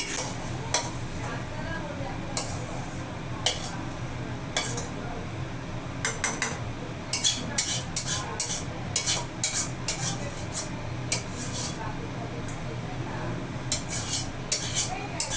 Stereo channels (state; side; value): identical; both; correlation 1.00